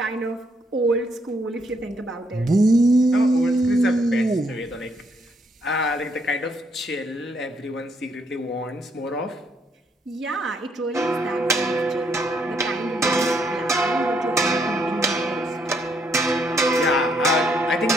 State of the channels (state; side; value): normal; both; correlation 0.72